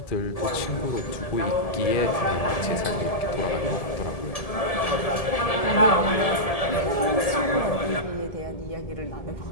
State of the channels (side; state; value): right; late; 1.7 ms